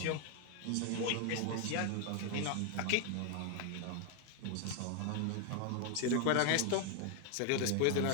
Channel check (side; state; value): both; different; correlation 0.00